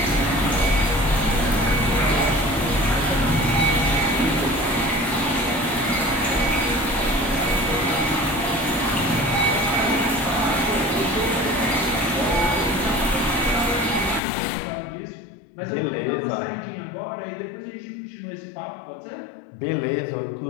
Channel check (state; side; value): drops out; right; at 14.2 s